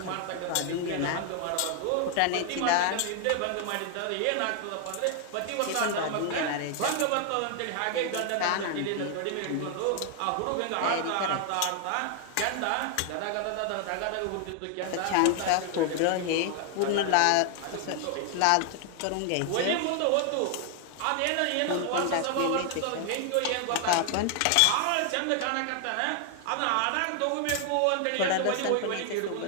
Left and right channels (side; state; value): both; different; correlation 0.00